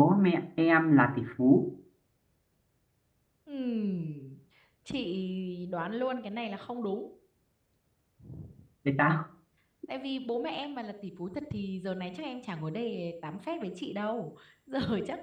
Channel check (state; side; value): identical; both; correlation 1.00